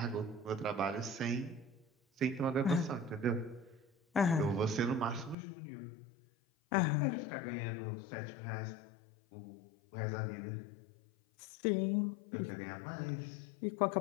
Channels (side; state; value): right; drops out; at 5.4 s